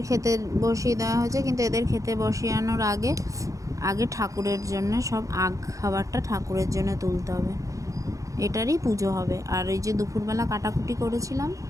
খেতে বসিয়ে দেওয়া হয়েছে, কিন্তু এদের খেতে বসিয়ানোর আগে ঠাকুরের জন্য সব খাবারটা ঠাকুরের জন্য তুলতে হবে, এটারই পুজো হবে। আর এই যে দুপুরবেলা কাটাকুটি করেছিলাম,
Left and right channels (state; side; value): late; left; 0.16 ms